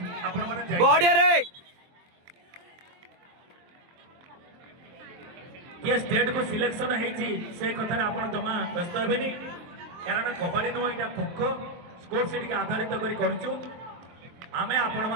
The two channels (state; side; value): late; left; 23 ms